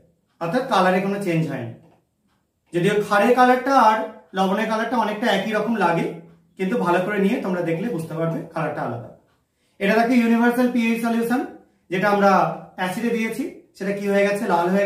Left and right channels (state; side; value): identical; both; correlation 1.00